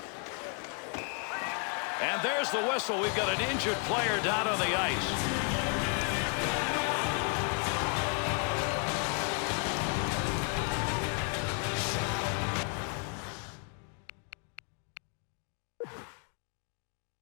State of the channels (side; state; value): right; quieter; 39.2 dB